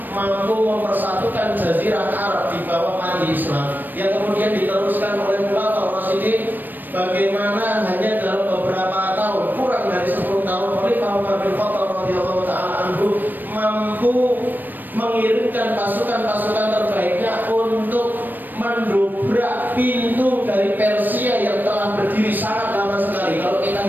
mampu mempersatukan jazirah Arab di bawah mandi Islam, yang kemudian diteruskan oleh Khulafaur Rasyidin. Bagaimana hanya dalam beberapa tahun, kurang dari 10 tahun, Khalifah Umar bin Khattab radhiyallahu taala anhu mampu mengirimkan pasukan-pasukan terbaiknya untuk mendobrak pintu dari Persia yang telah berdiri sangat lama sekali. Kalau kita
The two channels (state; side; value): late; left; 0.090 ms